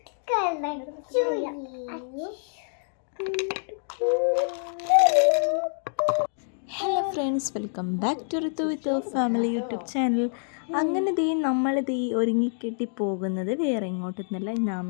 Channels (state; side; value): silent; right; digital silence